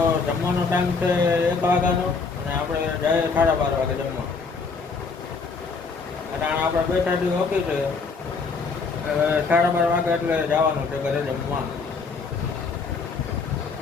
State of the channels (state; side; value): quieter; right; 4.7 dB